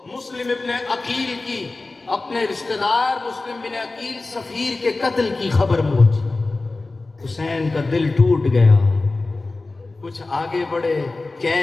مسلم ابن عقیل کی، اپنے رشتہ دار مسلم بن عقیل سفیر کے قتل کی خبر پہنچی. حسین کا دل ٹوٹ گیا. کچھ آگے بڑھے،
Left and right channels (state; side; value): quieter; right; 3.4 dB